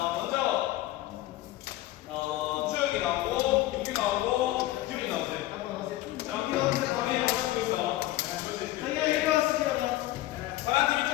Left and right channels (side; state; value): right; quieter; 15.9 dB